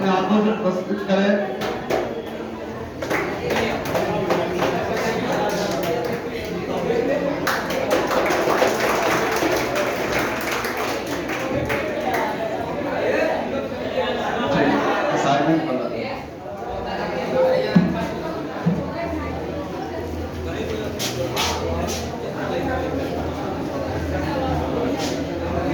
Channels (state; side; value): identical; both; correlation 1.00